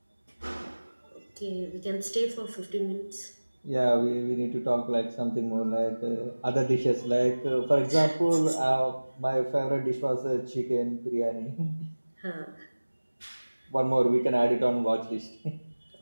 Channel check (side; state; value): both; inverted; correlation -1.00